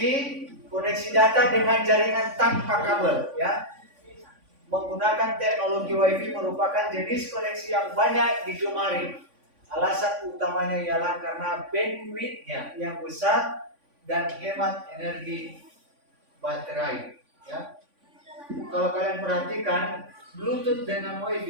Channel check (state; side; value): late; left; 3.5 ms